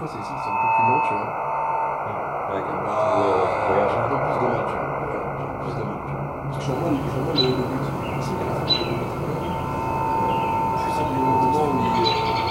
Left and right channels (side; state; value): both; identical; correlation 1.00